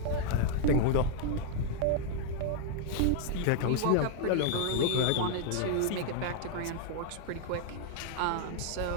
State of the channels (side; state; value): both; different; correlation 0.00